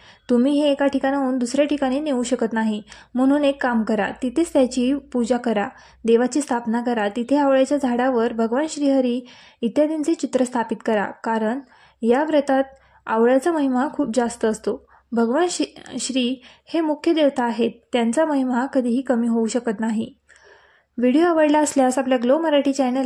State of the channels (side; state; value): both; identical; correlation 1.00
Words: तुम्ही हे एका ठिकाणाहून दुसऱ्या ठिकाणी नेऊ शकत नाही. म्हणून एक काम करा, तिथेच त्याची पूजा करा, देवाची स्थापना करा. तिथे आवळ्याच्या झाडावर भगवान श्रीहरी इत्यादींचे चित्र स्थापित करा, कारण या व्रतात आवळ्याचा महिमा खूप जास्त असतो. भगवान श्री हे मुख्य देवता आहेत. त्यांचा महिमा कधीही कमी होऊ शकत नाही. व्हिडिओ आवडला असल्यास आपल्या ग्लो मराठी